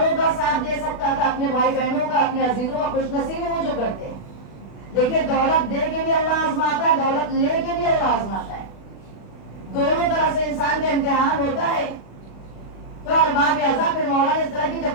کا ساتھ دے سکتا تھا، اپنے بھائی بہنوں کا، اپنے عزیزوں کا خوش نصیبی وہ جو کرتے ہیں. دیکھیے دولت دے کے بھی اللہ آزماتا ہے، دولت لے کے بھی اللہ آزماتا ہے. دونوں طرح سے انسان کا امتحان ہوتا ہے. تو ارباب اعضاء پھر مولا نے اس طرح کی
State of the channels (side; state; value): right; late; 36 ms